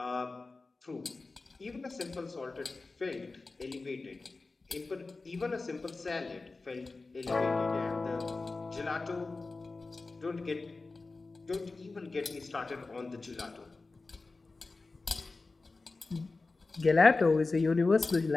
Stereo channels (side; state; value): right; quieter; 3.7 dB